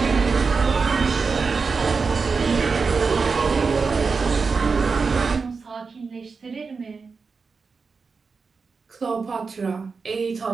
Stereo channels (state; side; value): quieter; left; 4.8 dB